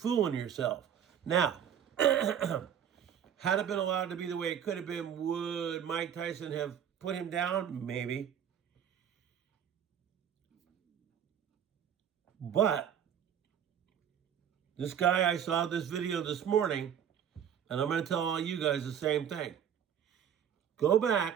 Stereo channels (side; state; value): left; quieter; 8.9 dB